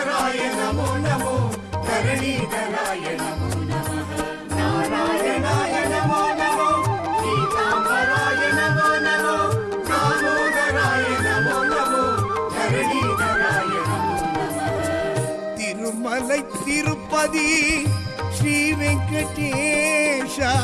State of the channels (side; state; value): both; identical; correlation 1.00